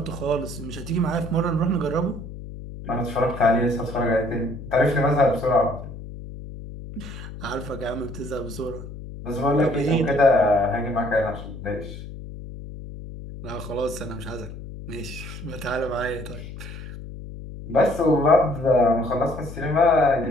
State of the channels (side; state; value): left; noise; hum, 12 dB below the sound